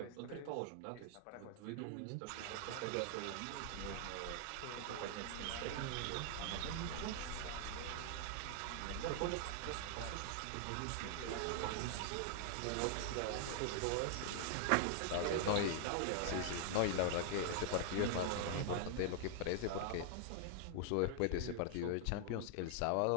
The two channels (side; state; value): both; different; correlation 0.00